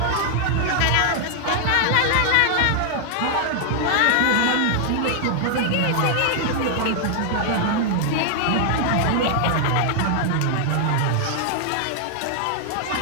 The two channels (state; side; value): different; both; correlation 0.00